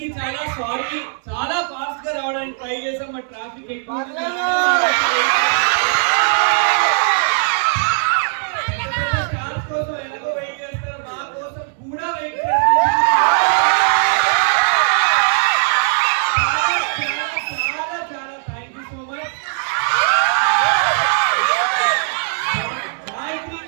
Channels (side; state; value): left; silent; 65 dB below the other